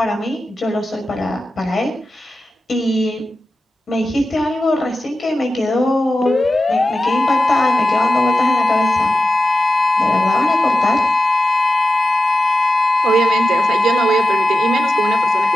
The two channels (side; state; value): both; normal; correlation 0.92